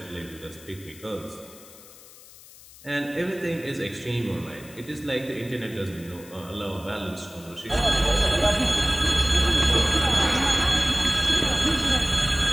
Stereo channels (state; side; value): noise; left; hiss, 21 dB below the sound